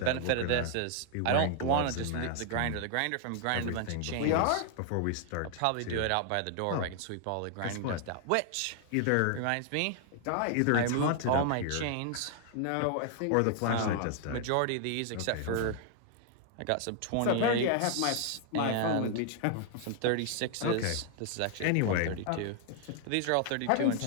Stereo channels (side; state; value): both; different; correlation 0.00